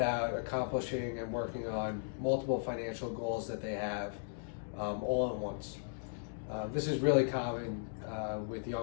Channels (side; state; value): right; silent; digital silence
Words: accomplishing and working on multiple financial goals that they have all at once. This is really common with